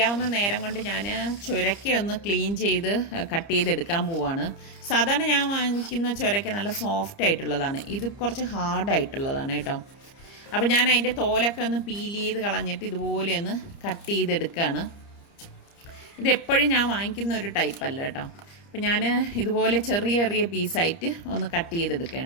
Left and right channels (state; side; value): late; right; 30 ms